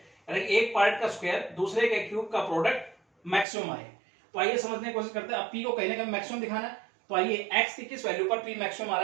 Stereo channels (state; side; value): drops out; left; at 3.5 s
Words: यानी एक पार्ट का स्क्वायर दूसरे के क्यूब का प्रोडक्ट मैक्सिमम आए। तो आइए समझने की कोशिश करते हैं। अब p को कहीं ना कहीं मैक्सिमम दिखाना है, तो आइए x की किस वैल्यू पर p मैक्सिमम आ